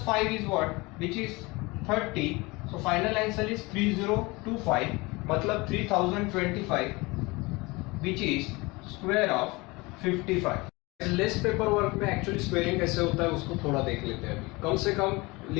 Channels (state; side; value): quieter; right; 24.1 dB